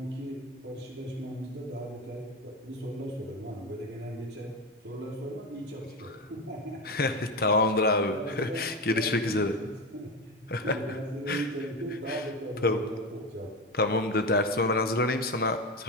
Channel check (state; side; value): normal; both; correlation 0.19